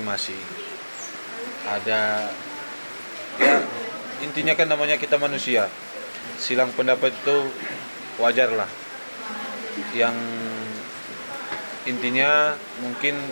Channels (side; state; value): both; inverted; correlation -1.00